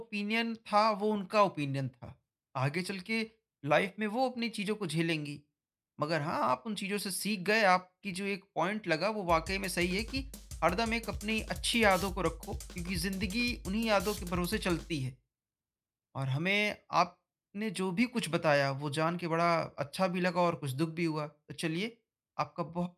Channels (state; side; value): identical; both; correlation 1.00